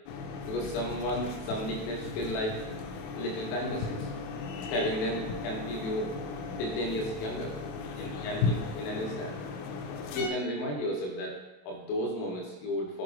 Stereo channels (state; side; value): late; right; 27 ms